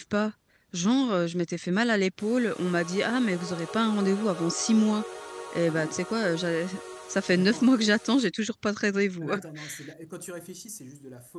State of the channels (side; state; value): both; identical; correlation 1.00